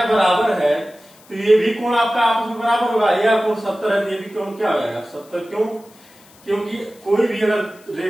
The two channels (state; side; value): noise; left; hiss, 27 dB below the sound